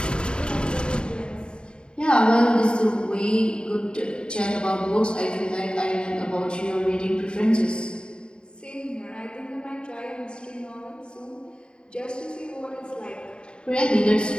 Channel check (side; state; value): right; late; 0.051 ms